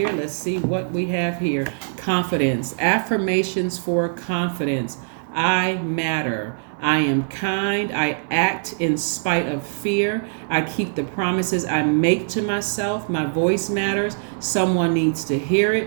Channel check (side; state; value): left; silent; digital silence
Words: Let's see what we have here. Confidence. Affirmations for confidence. I matter. I am kind. I act in spite of fear. I keep the promises I make to myself. My voice matters. Someone needs to hear